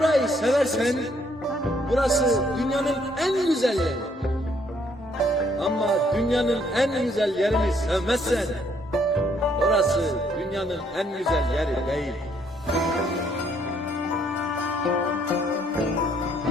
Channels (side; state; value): both; normal; correlation 0.67